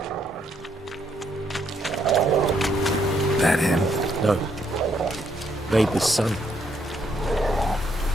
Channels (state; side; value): normal; both; correlation 0.73